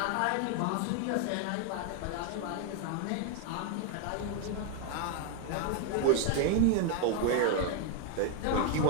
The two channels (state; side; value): different; both; correlation 0.00